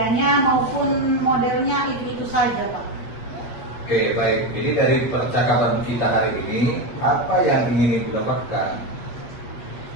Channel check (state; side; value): late; right; 8.4 ms